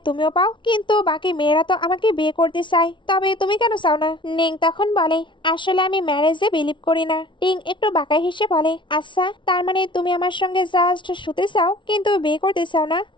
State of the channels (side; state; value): right; late; 0.24 ms